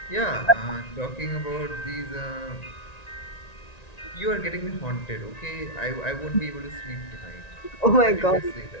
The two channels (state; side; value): late; right; 1.9 ms